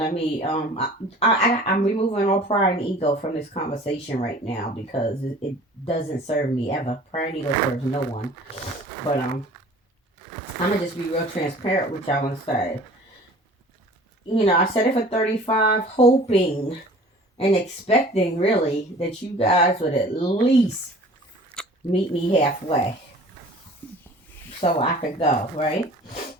I'm removing all pride and ego from this conversation right now because it doesn't serve me ever. Pride and ego serves no one. But I'm gonna just be real transparent with y'all and say, I said it for 35, hoping and expecting really that you guys would at least meet me halfway so I could go, right?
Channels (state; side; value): normal; both; correlation 0.47